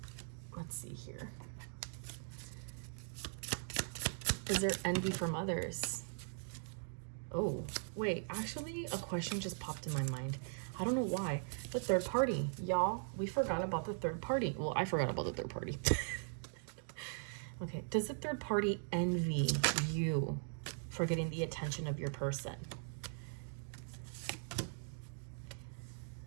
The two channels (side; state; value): left; silent; digital silence